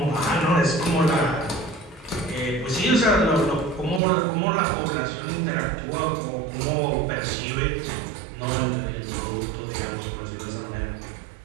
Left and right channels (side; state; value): left; drops out; at 4.0 s